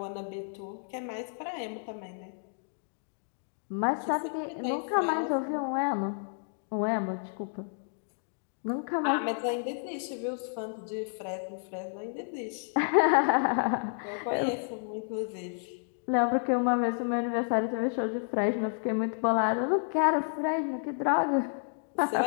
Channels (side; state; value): right; silent; digital silence